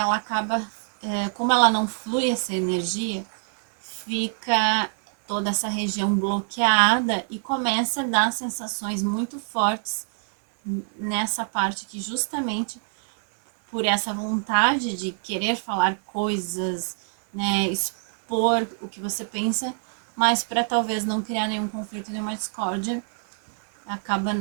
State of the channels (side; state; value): left; silent; 61 dB below the other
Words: acaba, como ela não flui essa energia, fica toda essa região bloqueada e começa a dar sensações muito fortes nessa parte que justamente por essa vontade de querer falar coisas, né, expor o que você pensa, mas para talvez não criar nenhum conflito, nenhuma discórdia, acaba